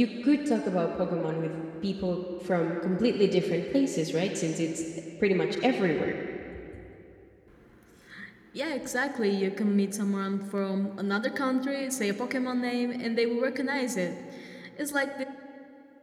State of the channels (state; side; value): identical; both; correlation 1.00